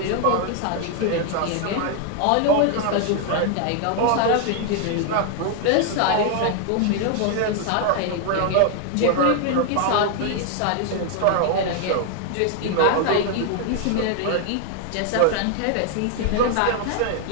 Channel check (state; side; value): different; both; correlation 0.00